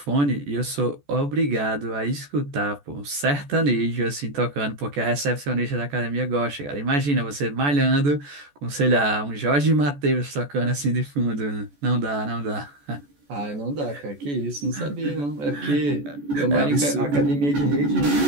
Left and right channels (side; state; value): left; late; 14 ms